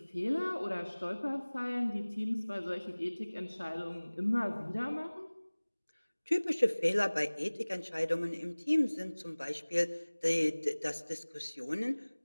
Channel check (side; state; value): both; inverted; correlation -1.00